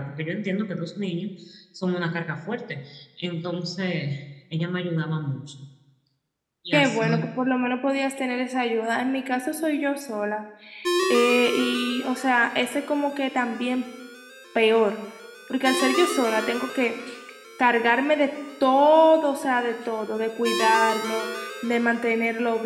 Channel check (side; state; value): both; identical; correlation 1.00